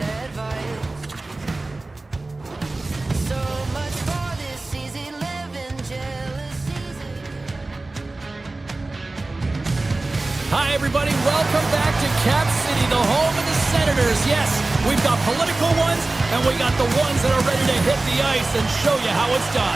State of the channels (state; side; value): quieter; left; 3.1 dB